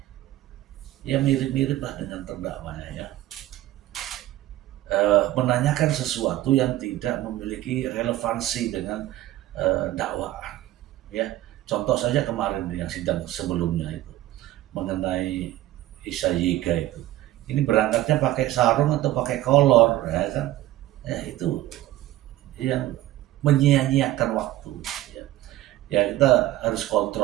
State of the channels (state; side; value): quieter; left; 15.0 dB